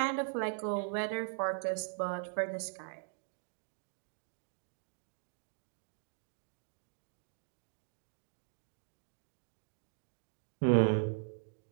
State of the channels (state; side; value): silent; left; digital silence